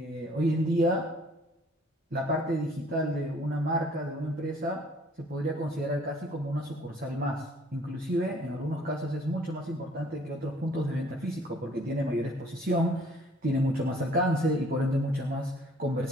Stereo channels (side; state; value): both; normal; correlation 0.57